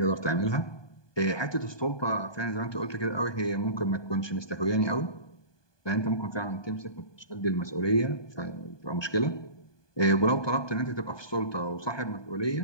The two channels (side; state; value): right; late; 1.2 ms